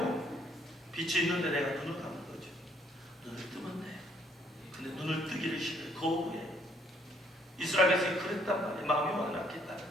빛이 있는데 내가 눈을 감는 거죠. 눈을 뜨면 돼. 근데 눈을 뜨기를 싫어해. 거부해. 이스라엘 백성이 그랬단 말이에요. 마음이 완악했다.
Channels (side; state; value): both; normal; correlation 0.66